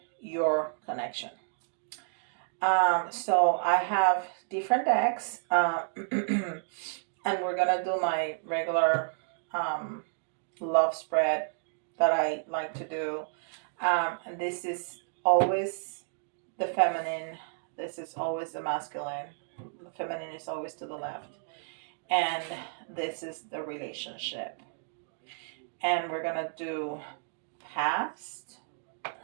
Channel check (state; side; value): silent; left; digital silence